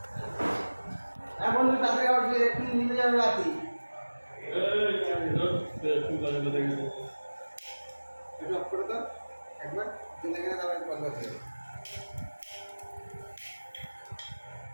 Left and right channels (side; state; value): both; inverted; correlation -1.00